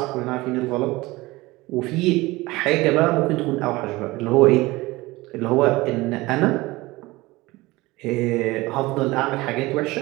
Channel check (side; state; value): left; quieter; 20.7 dB